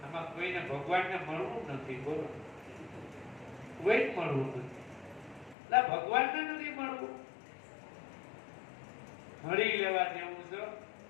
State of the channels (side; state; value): right; drops out; at 5.6 s